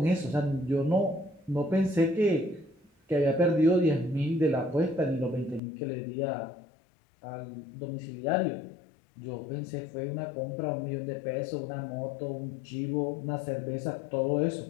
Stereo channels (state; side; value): drops out; right; at 5.6 s